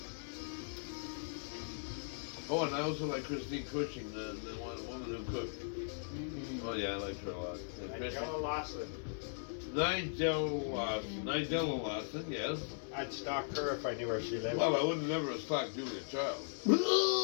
Oh, and I also like Christine Cushing, the woman who cooked. Mm-hmm. Oh yeah, I liked her a lot. And Nigella Lawson. Nigella Lawson, yes. I'd stalk her if I knew where she lived. Well, I wouldn't never have stalked Julia Child.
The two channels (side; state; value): right; silent; digital silence